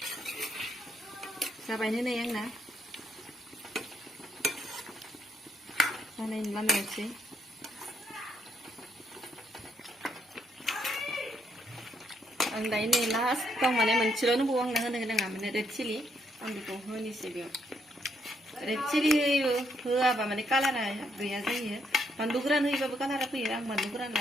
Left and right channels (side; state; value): both; normal; correlation 0.75